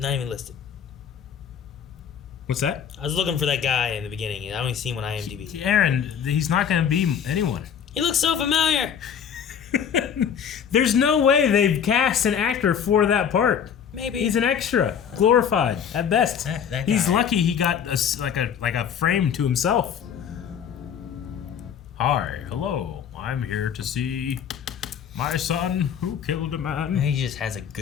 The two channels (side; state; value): right; quieter; 8.0 dB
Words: even listed. What's that? I was looking for that guy in the beginning, and I only seen him on IMDb. Aaron, he's not going to be anyone. He looks so familiar. There's no way they've cast an actor for that part. Maybe he's an extra, glorified at best. That he's guy. Lucky he got like a frame to himself. Hi, hello. I'm here to see my son who killed a man. He just has a